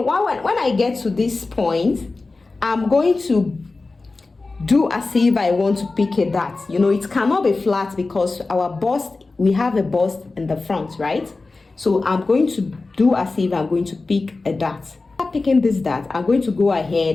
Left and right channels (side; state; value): right; quieter; 3.6 dB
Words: when I get to this point, I'm going to do as if I want to pick a dart. You know, it cannot be flat because our bust, we have a bust in the front, right? So I'm going to do as if I'm going to pick a dart. After picking this dart, I'm going to go